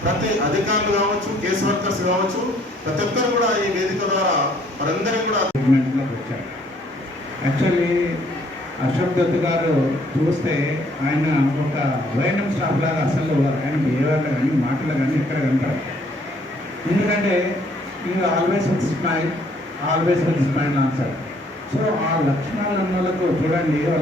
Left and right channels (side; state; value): both; normal; correlation 0.63